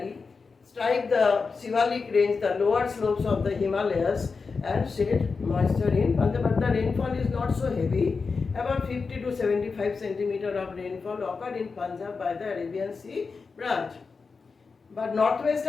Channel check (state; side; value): quieter; right; 4.7 dB